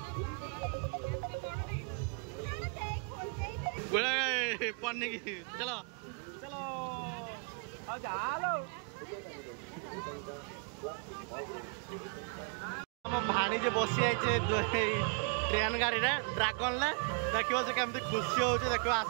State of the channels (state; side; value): quieter; left; 38.8 dB